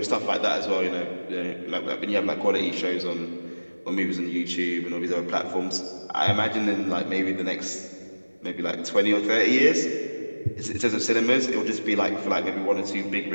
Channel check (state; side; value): inverted; both; correlation -1.00